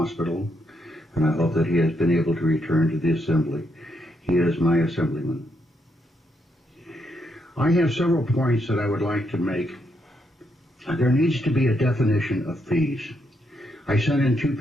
and I hope that he has been able to return to the Assembly. He is my Assemblyman. I have several points that I would like to make. There needs to be a definition of fees. I sent in 2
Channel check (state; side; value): normal; both; correlation 0.78